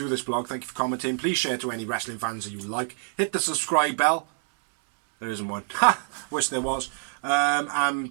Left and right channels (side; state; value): left; silent; 61 dB below the other